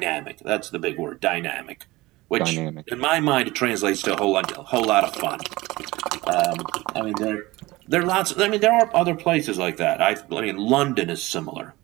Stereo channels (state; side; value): quieter; left; 20.2 dB